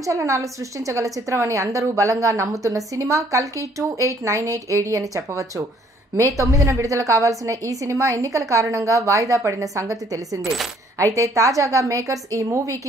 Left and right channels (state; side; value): normal; both; correlation 0.62